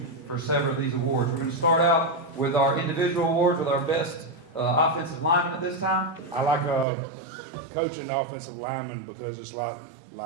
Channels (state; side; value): drops out; left; at 6.9 s